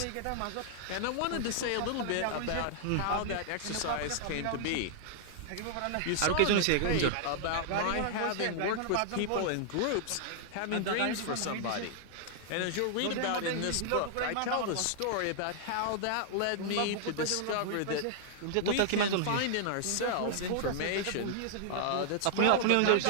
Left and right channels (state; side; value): different; both; correlation -0.01